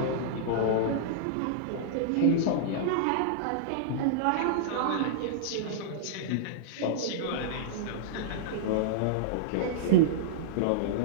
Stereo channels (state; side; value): different; both; correlation -0.03